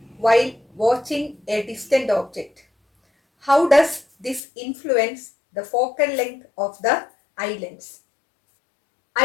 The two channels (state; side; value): drops out; right; at 4.4 s